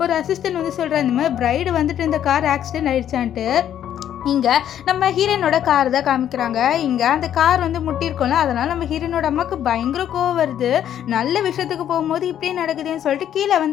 ஒரு அசிஸ்டன்ட் சொல்கிறார், இந்த மாதிரி பிரைடு இந்த கார் ஆக்சிடென்ட் ஆயிடுச்சான்ட்டு. இங்கே நம்ம ஹீரோனோட கார் தான் காமிக்கிறாங்க. இங்கே அந்த கார் முட்டியிருக்கோம்ல, அதனால் நம்ம ஹீரோனோட அம்மாவுக்கு பயங்கர கோவம் வருது. நல்ல விஷயத்துக்கு போகும்போது இப்படியே நடக்குதுன்னு சொல்லிட்டு கீழே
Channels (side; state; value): right; quieter; 10.4 dB